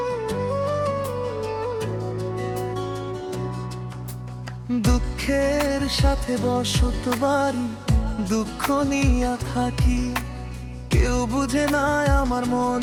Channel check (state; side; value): identical; both; correlation 1.00